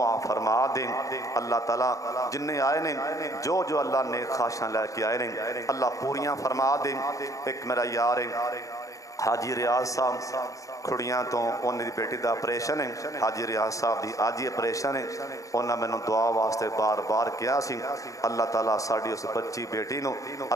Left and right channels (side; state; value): right; late; 0.16 ms